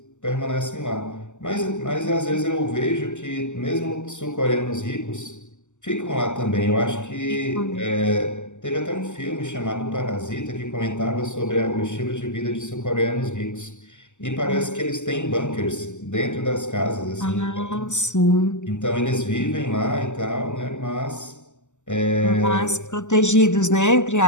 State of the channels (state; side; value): late; right; 0.84 ms